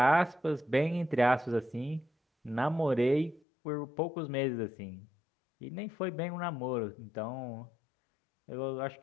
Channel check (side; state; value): right; drops out; at 3.4 s